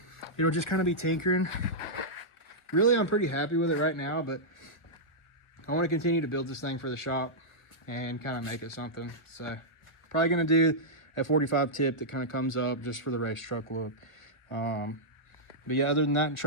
it'll just kind of be tinkering. Really, I'm pretty happy with it right now, but I want to continue to build this thing for the shop and kind of make it something. So probably going to do a 45 tip that kind of comes up just for the race truck look. But yeah, other than that, and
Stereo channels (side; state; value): right; late; 1.4 ms